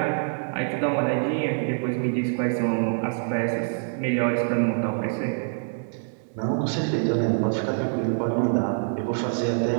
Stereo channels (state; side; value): silent; left; digital silence